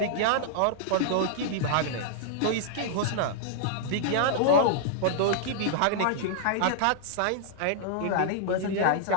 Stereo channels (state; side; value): different; both; correlation -0.01